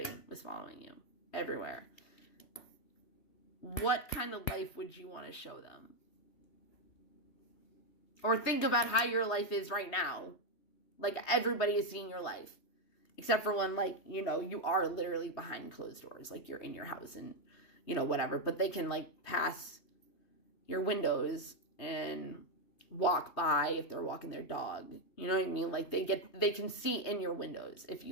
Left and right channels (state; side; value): late; right; 3.2 ms